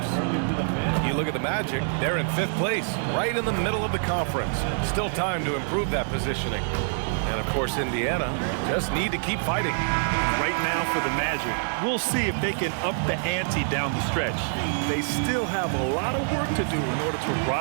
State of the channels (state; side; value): silent; left; 61 dB below the other